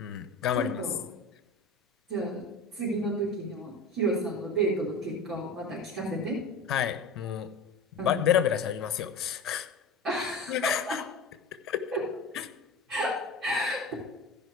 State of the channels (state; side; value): quieter; right; 3.0 dB